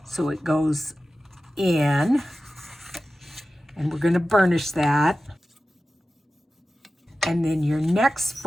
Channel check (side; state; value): both; normal; correlation 0.94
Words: So it goes in, and we're going to burnish that. And then your next